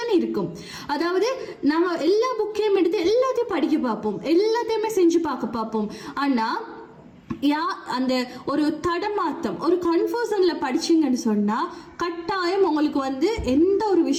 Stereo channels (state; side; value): identical; both; correlation 1.00